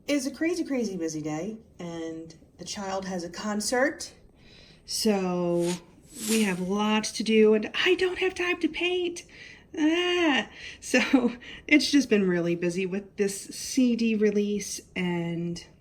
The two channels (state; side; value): identical; both; correlation 1.00